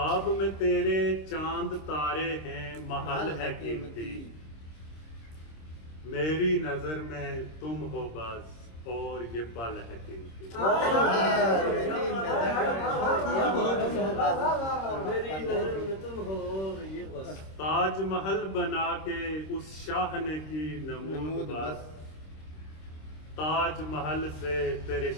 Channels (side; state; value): right; late; 26 ms